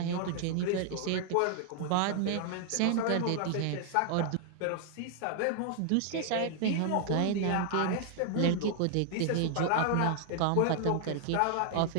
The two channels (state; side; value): different; both; correlation 0.00